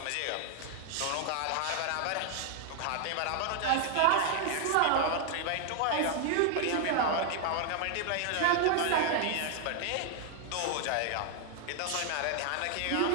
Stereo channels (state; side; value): different; both; correlation 0.00